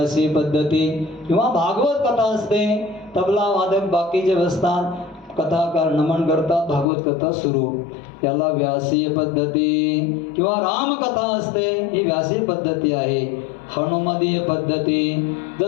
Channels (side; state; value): right; drops out; at 6.9 s